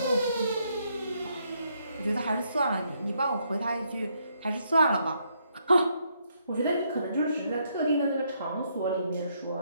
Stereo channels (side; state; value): both; inverted; correlation -0.74